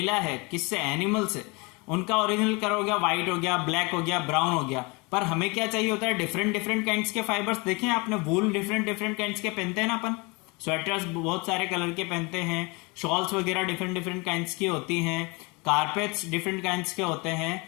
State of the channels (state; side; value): quieter; right; 28.0 dB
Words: है किससे, एनिमल से, उनका ओरिजिनल कलर हो गया व्हाइट, हो गया ब्लैक, हो गया ब्राउन, हो गया। पर हमें क्या चाहिए होता है, डिफरेंट डिफरेंट काइंड्स के फाइबर्स। देखें आपने, वूल डिफरेंट डिफरेंट काइंड्स के पहनते हैं ना अपन, स्वेटर्स बहुत सारे कलर के पहनते हैं, शॉल्स वगैरह डिफरेंट डिफरेंट काइंड्स की होती हैं, कारपेट्स डिफरेंट काइंड्स के होते हैं।